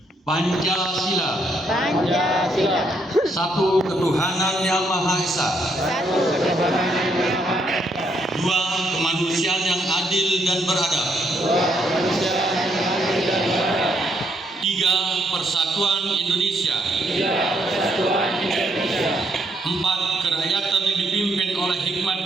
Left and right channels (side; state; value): both; normal; correlation 0.73